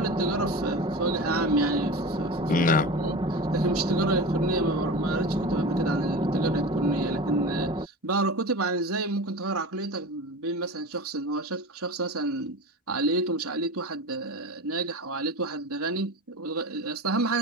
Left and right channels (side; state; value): both; normal; correlation 0.30